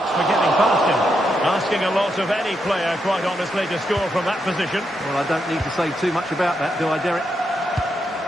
for getting past him. Asking a lot of any player, quite honestly, to score from that position. Well, I don't need to say too much about that, do I, Derek?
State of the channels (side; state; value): both; normal; correlation 0.82